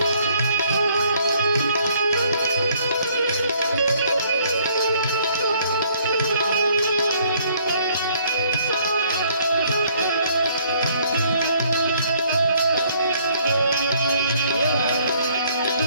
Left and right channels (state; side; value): inverted; both; correlation -0.63